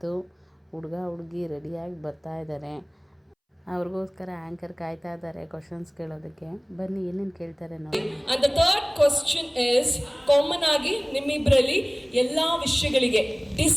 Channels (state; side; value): identical; both; correlation 1.00